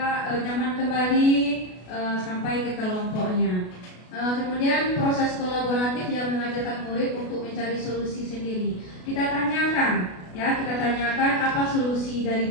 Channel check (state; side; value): late; right; 33 ms